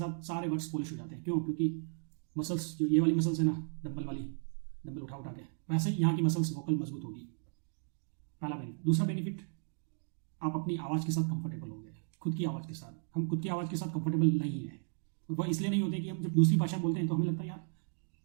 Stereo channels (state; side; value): silent; left; 55 dB below the other